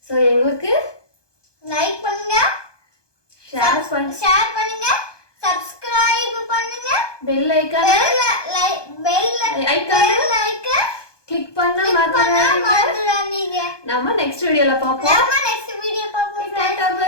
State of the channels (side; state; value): right; late; 1.2 ms